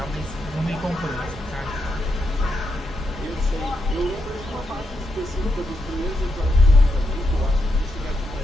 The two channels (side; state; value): both; normal; correlation 0.83